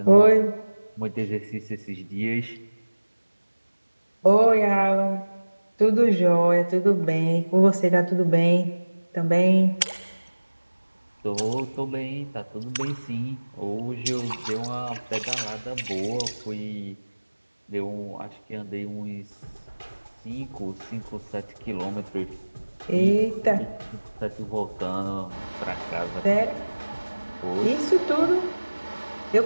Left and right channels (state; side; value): inverted; both; correlation -1.00